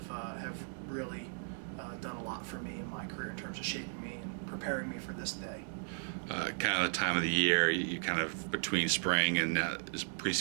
really done a lot for me in my career in terms of shaping me and preparing me for this day. Kind of the time of the year, you kind of between spring and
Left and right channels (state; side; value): silent; left; digital silence